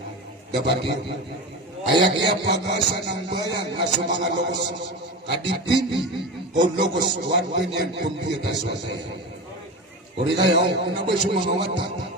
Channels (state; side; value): normal; both; correlation 0.25